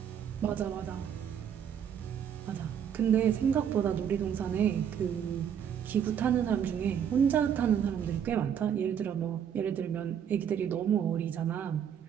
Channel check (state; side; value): quieter; left; 8.6 dB